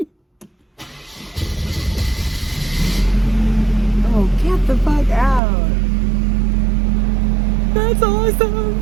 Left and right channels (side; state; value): left; drops out; at 5.4 s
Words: Oh, get the fuck out. That's awesome.